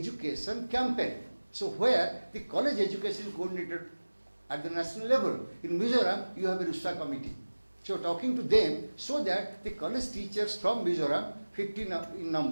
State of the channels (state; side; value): inverted; both; correlation -1.00